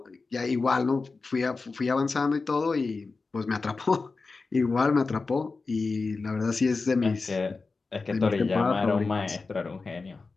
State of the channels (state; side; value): quieter; right; 4.1 dB